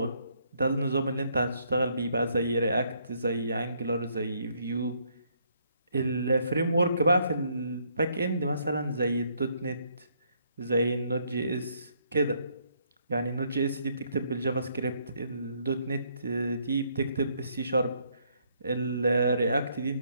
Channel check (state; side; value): inverted; both; correlation -0.70